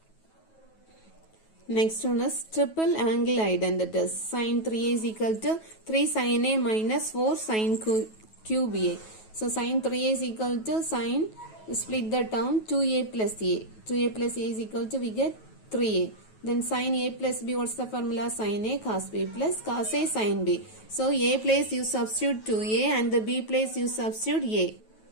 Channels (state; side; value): late; right; 9.2 ms